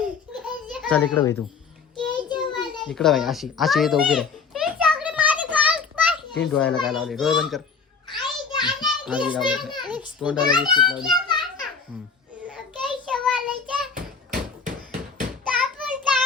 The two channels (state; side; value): quieter; right; 5.4 dB